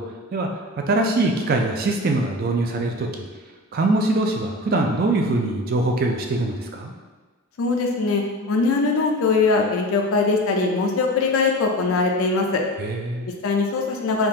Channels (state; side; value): normal; both; correlation 0.31